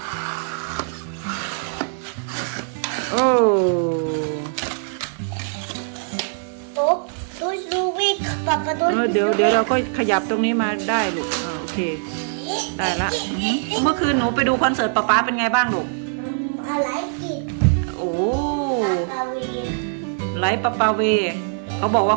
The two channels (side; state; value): left; silent; digital silence